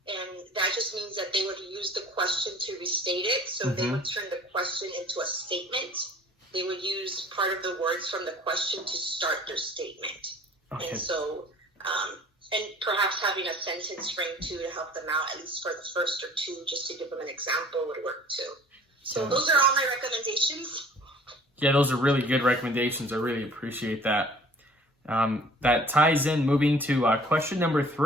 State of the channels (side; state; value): both; normal; correlation 0.50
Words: And that just means that they would use the question to restate it. So they would turn the question into a statement. They would use part of the words from the question to start their statement. Okay. And so, and perhaps having a sentence frame too to help them out, at least for the first or two, just to give them an example would work too. So those are all my recommendations. Yeah, those are really good recommendations. I really appreciate that. That ties in, moving to question number